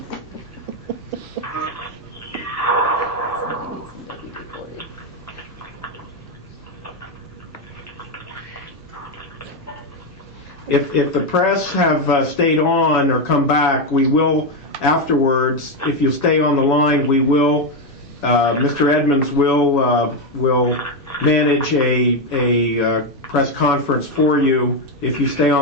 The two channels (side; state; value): both; normal; correlation 0.07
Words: If the press have stayed on or come back, we will afterwards, if you stay on the line, we will, Mr. Edmonds will manage a press conference for you if you stay